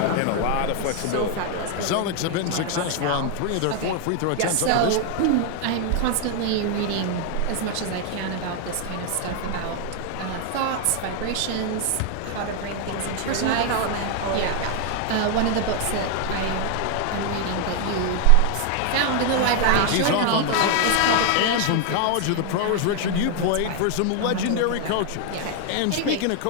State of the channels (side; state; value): both; different; correlation 0.00